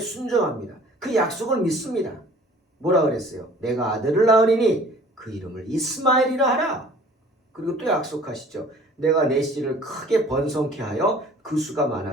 그 약속을 믿습니다. 뭐라 그랬어요? 내가 아들을 낳으리니 그 이름을 이스마엘이라 하라. 그리고 또 약속하시죠. 내가 내 씨를 크게 번성케 하여 그 수가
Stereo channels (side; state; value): both; normal; correlation 0.50